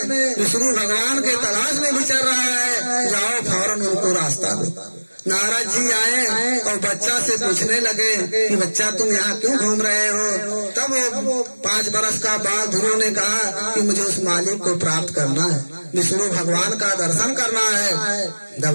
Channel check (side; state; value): both; inverted; correlation -1.00